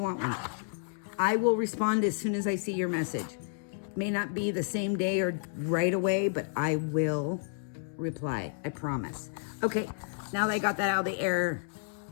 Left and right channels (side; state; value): right; silent; 57 dB below the other